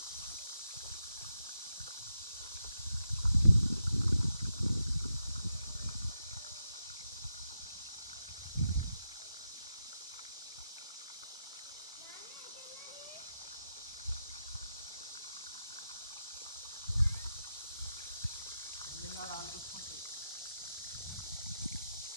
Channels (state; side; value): inverted; both; correlation -0.86